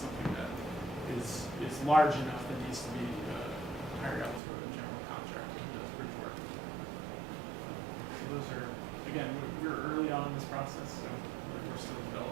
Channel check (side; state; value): left; drops out; at 4.4 s